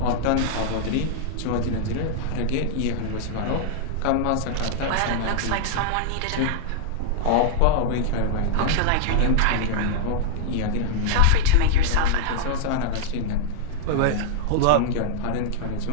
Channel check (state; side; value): different; both; correlation -0.01